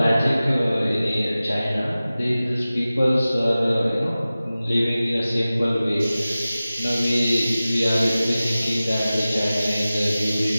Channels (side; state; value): both; inverted; correlation -0.96